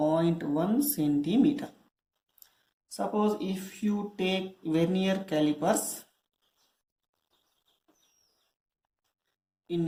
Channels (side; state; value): both; identical; correlation 1.00